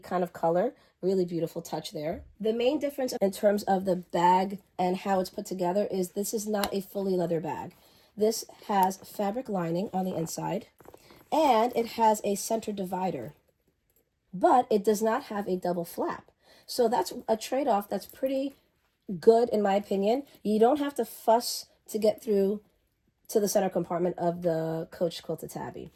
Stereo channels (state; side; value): identical; both; correlation 1.00